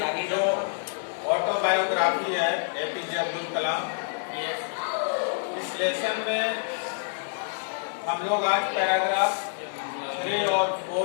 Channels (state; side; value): silent; right; digital silence